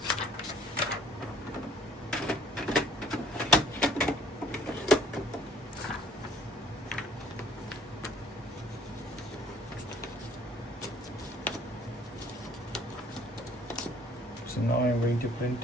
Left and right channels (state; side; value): normal; both; correlation 0.56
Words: So now I'm going to